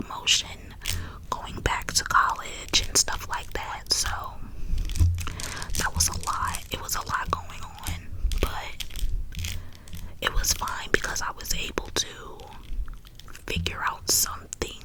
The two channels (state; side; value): identical; both; correlation 1.00